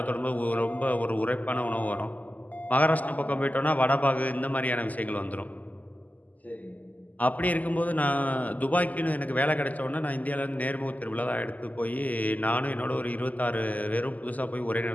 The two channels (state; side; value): late; right; 0.079 ms